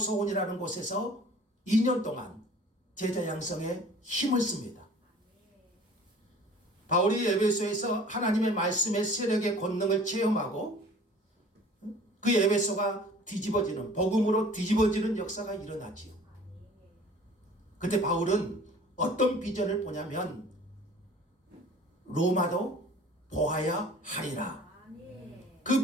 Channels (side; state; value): both; normal; correlation 0.48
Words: 곳에서 2년 동안 제자 양성에 힘을 씁니다. 바울이 에베소에서 하나님의 말씀의 세력의 권능을 체험하고 그 에베소가 뒤집어지는, 복음으로 뒤집어지는 역사가 일어나지요. 그때 바울은 어떤 비전을 보냐면 로마도 보아야 하리라.